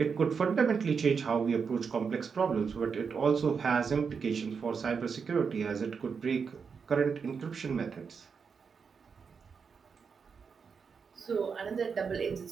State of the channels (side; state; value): left; quieter; 5.8 dB